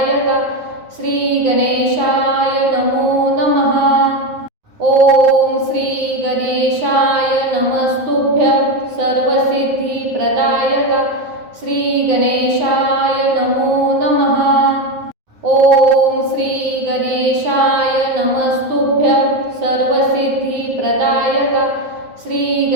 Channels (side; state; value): left; late; 9.5 ms